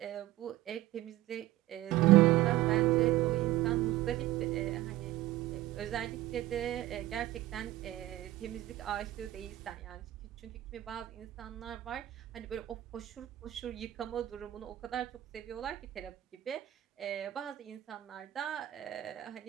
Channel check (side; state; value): left; quieter; 15.3 dB